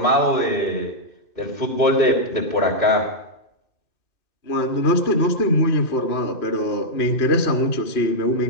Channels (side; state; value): right; late; 2.5 ms